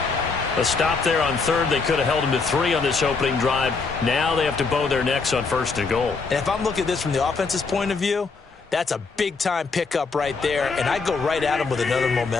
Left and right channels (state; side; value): quieter; right; 4.5 dB